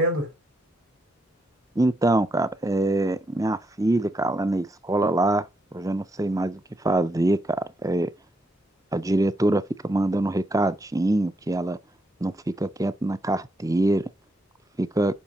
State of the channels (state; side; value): normal; both; correlation 0.80